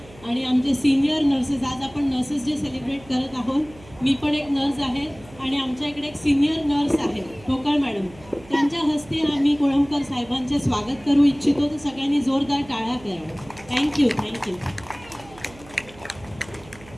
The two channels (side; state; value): right; noise; hum, 22 dB below the sound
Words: आणि आमचे सिनियर नर्सेस, आज आपण नर्सेस डे सेलिब्रेट करत आहोत. मी पण एक नर्स आहे आणि आमच्या इकडे एक सिनियर नर्स आहे ठोकळ मॅडम, त्यांच्या हस्ते आम्ही कोळंबकर साहेबांचे स्वागत करू इच्छितो. तर सगळ्यांनी जोरदार टाळ्या कराव्या. Thank you thank you.